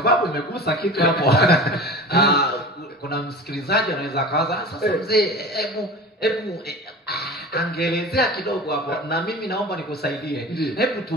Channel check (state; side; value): normal; both; correlation 0.36